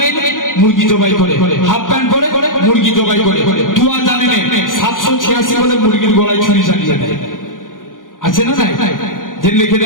মুরগি জবাই করে, হাফ প্যান্ট পরে মুরগি জবাই করে, 2000 জানেন 786 বলে মুরগির গলায় ছুরি চালিয়ে দেয়, আছে না নাই? যে লিখে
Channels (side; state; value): right; late; 0.89 ms